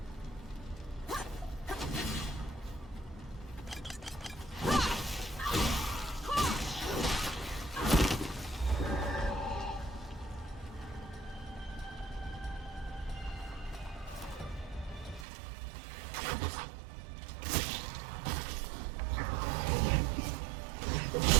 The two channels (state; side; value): drops out; left; at 15.2 s